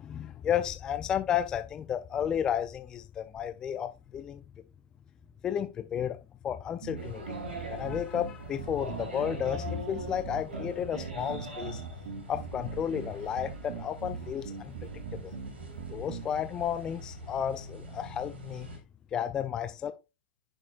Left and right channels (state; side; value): quieter; right; 6.7 dB